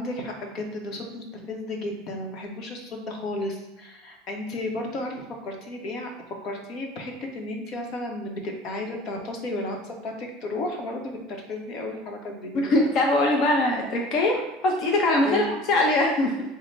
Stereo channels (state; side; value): normal; both; correlation 0.44